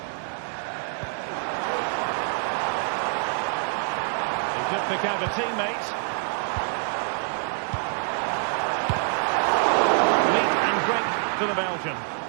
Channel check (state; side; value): silent; left; 61 dB below the other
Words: He could pick out a teammate. Meat and drink to the Belgian.